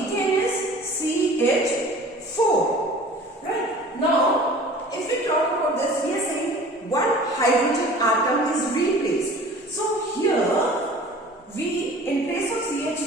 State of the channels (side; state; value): both; normal; correlation 0.45